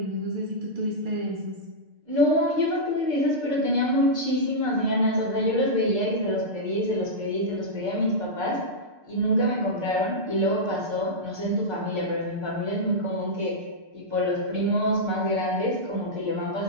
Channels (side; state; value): left; late; 6.6 ms